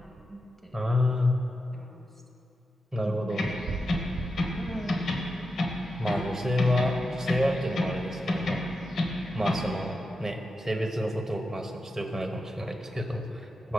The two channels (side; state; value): both; normal; correlation 0.88